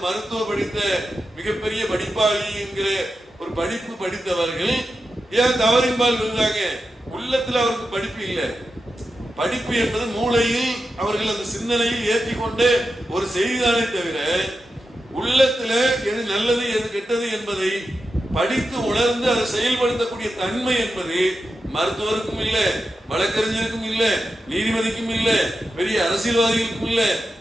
மருத்துவ படித்த மிகப்பெரிய படிப்பாளி என்கிற ஒரு படிப்பு படித்தவர்கள் ஏன் தவறின்பால் விழுந்தாங்க? உள்ளத்துல அவருக்கு படிப்பு இல்லை. படிப்பு என்பது மூளையில் அவர்கள் அந்த சிந்தனையில் ஏற்றிக்கொண்டு ஒரு செய்திதானே தவிர உள்ளத்துல எது நல்லது எது கெட்டது என்பதை படித்து உணர்ந்து அதை செயல்படுத்தக்கூடிய தன்மை என்பது மருத்துவருக்கும் இல்லை, வழக்கறிஞருக்கும் இல்லை, நீதிபதிக்கும் இல்லை, பெரிய அரசியல்வாதிகளுக்கும் இல்லை,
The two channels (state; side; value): normal; both; correlation 0.90